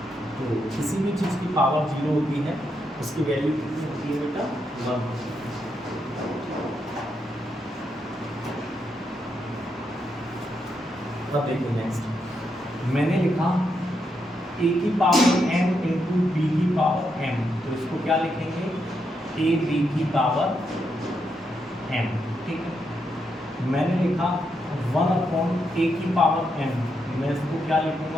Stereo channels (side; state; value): both; normal; correlation 0.81